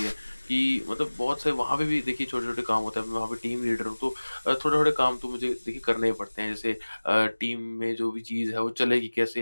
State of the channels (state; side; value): inverted; both; correlation -1.00